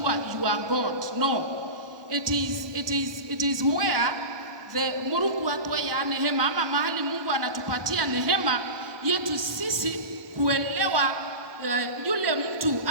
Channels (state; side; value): late; left; 1.2 ms